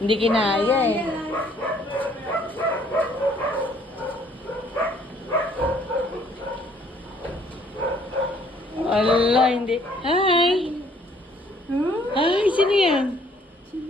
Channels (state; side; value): normal; both; correlation 0.62